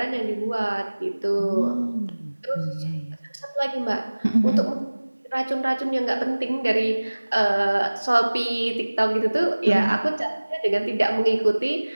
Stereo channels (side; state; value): both; inverted; correlation -1.00